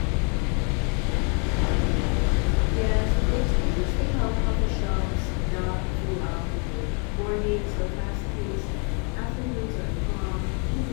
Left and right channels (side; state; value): right; quieter; 37.2 dB